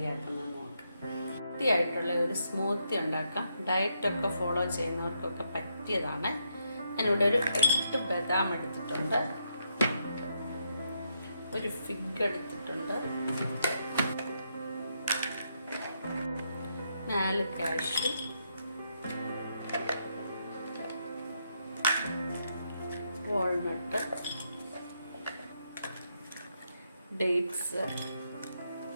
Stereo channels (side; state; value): both; inverted; correlation -0.79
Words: നോക്കാം. ഹെൽത്തിയായിട്ടുള്ള ഒരു സ്മൂത്തി ഉണ്ടാക്കാം. ഡയറ്റൊക്കെ ഫോളോ ചെയ്യുന്നവർക്കൊക്കെ പറ്റിയതാണ്. ഞാനിവിടെ ഒരു 8 ബദാം എടുത്തിട്ടുണ്ട്, ഒരു ഫിഗ് എടുത്തിട്ടുണ്ട്, 4 cashew, walnut, dates,